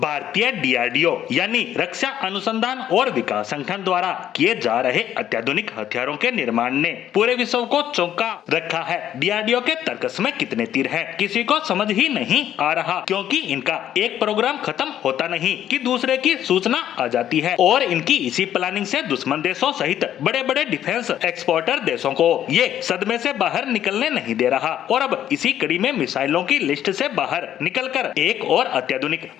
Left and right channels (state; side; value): quieter; right; 10.9 dB